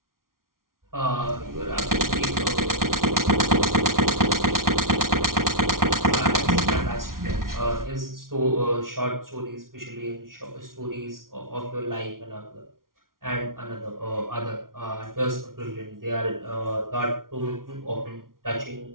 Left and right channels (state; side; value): late; left; 0.92 ms